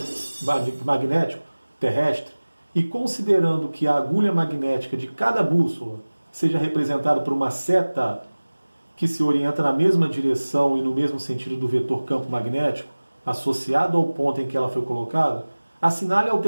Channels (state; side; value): inverted; both; correlation -1.00